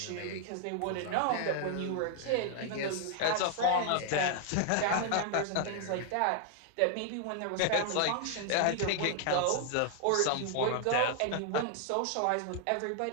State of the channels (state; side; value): different; both; correlation 0.00